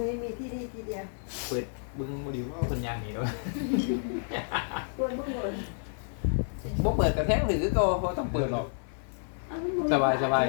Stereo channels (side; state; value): right; silent; 58 dB below the other